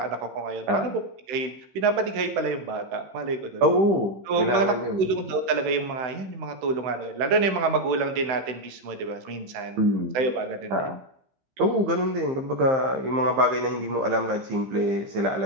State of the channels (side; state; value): left; late; 16 ms